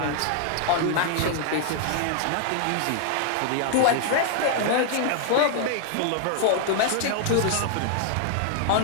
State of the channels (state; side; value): different; both; correlation 0.00